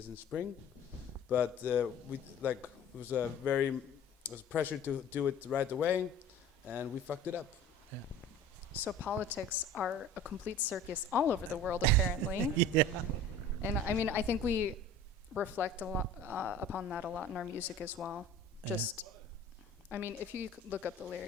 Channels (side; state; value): both; normal; correlation 0.43